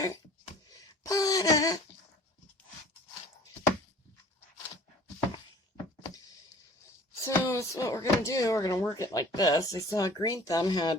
Butter. So that's what we're going to do. We're going to work it like this. I saw Green Thumb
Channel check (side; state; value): both; normal; correlation 0.49